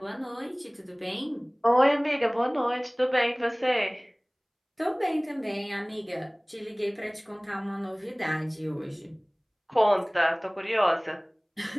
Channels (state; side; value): identical; both; correlation 1.00